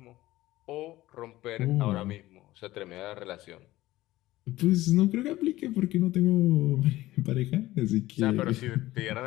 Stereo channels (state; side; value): quieter; right; 16.8 dB